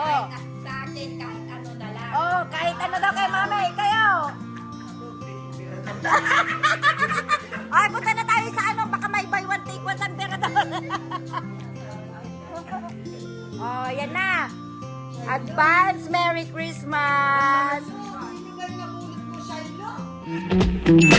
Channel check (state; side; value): identical; both; correlation 1.00